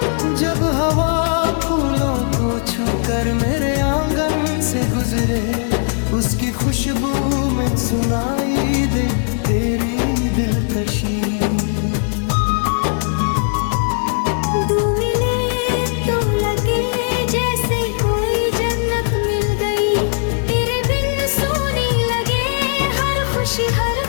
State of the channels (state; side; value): silent; right; digital silence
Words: जब हवा फूलों को छूकर मेरे आंगन से गुजरे, उसकी खुशबू में सुनाई दे तेरी दिलकशी। दो मिले तो लगे जैसे